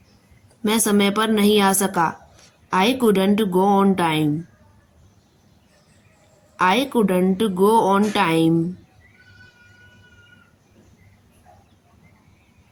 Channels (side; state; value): both; identical; correlation 1.00